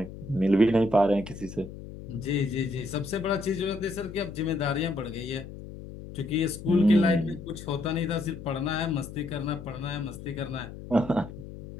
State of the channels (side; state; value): left; noise; hum, 13 dB below the sound